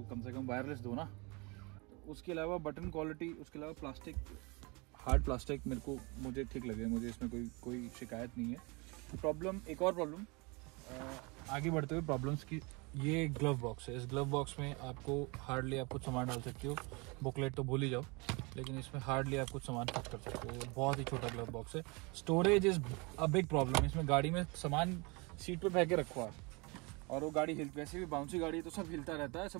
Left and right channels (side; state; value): left; quieter; 28.4 dB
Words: कम से कम वायरलेस दो ना। उसके अलावा बटन क्वालिटी, उसके अलावा प्लास्टिक, हार्ड प्लास्टिक मुझे ठीक लगे, मुझे इसमें कोई शिकायत नहीं है। एक और प्रॉब्लम आगे बढ़ते हुए प्रॉब्लम्स की, ये ग्लव बॉक्स है। इस ग्लव बॉक्स में आपको हार्डली आप कुछ सामान डाल सकते हो, बुकलेट तो भूल ही जाओ, लेकिन इसमें हार्डली आप कुछ सामान फिट कर सकते हो। बहुत ही छोटा ग्लव बॉक्स है। Storage is a big problem. इसमें गाड़ी में सामान सीट पे फेंके रखो आप, और वो गाड़ी वैसे भी बाउंसी गाड़ी है, तो सब हिलता रहता है,